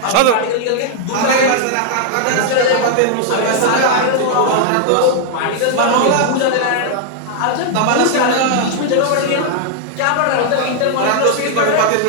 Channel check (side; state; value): both; different; correlation 0.00